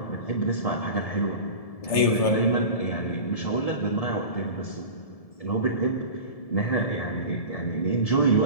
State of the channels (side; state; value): right; late; 1.7 ms